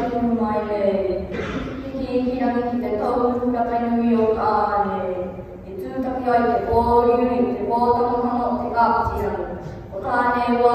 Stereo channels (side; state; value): both; identical; correlation 1.00